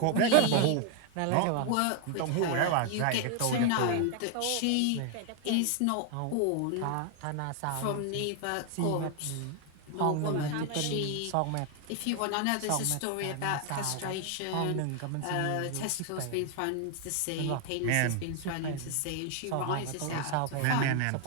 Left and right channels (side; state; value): both; different; correlation 0.00